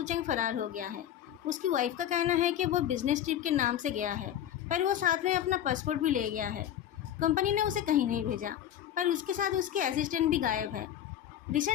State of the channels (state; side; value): quieter; right; 10.7 dB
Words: चेंग फरार हो गया है। उसकी वाइफ का कहना है कि वो बिजनेस ट्रिप के नाम से गया है, पर वो साथ में अपना पासपोर्ट भी ले गया है। कंपनी ने उसे कहीं नहीं भेजा, पर उसके साथ उसके असिस्टेंट भी गायब है।